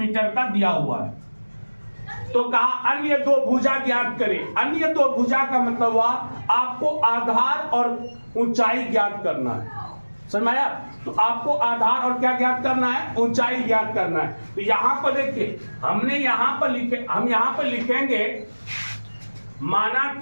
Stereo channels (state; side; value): inverted; both; correlation -1.00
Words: का दिया हुआ है। तो कहा अन्य दो भुजा ज्ञात करें। अन्य दो भुजा का मतलब हुआ आपको आधार और ऊंचाई ज्ञात करना है, समझ में आया। तो आपको आधार और क्या ज्ञात करना है, ऊंचाई ज्ञात करना है। तो यहां पर देखिए हमने यहां पर लिखे, हम यहां पर लिखेंगे माना